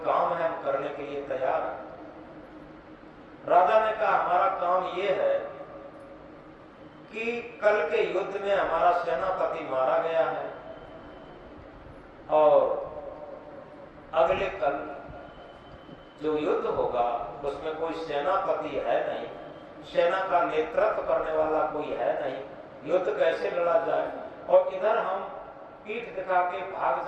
काम है, हम करने के लिए तैयार हैं। राजा ने कहा हमारा काम यह है कि कल के युद्ध में हमारा सेनापति मारा गया है, और अगले कल जो युद्ध होगा उसमें कोई सेनापति है नहीं, सेना का नेतृत्व करने वाला कोई है नहीं, युद्ध कैसे लड़ा जाए। और इधर हम पीठ दिखा के भाग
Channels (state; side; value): identical; both; correlation 1.00